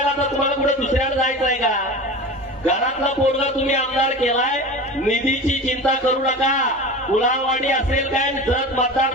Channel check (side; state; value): both; normal; correlation 0.32